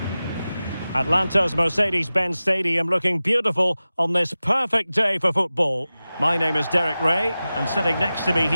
Atlanta's Mercedes-Benz Stadium looking beautiful on this perfect day for football. My name is Derek Ray, and sitting next to me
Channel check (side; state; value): both; inverted; correlation -0.95